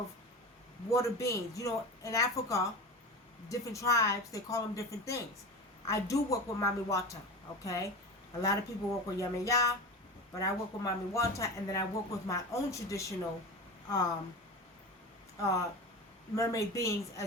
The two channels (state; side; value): normal; both; correlation 0.29